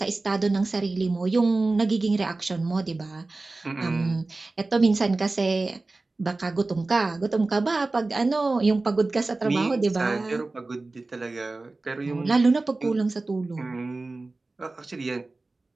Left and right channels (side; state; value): left; quieter; 3.3 dB